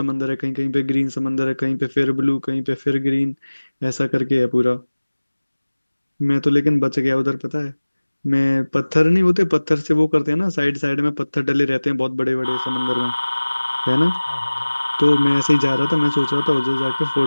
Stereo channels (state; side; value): inverted; both; correlation -1.00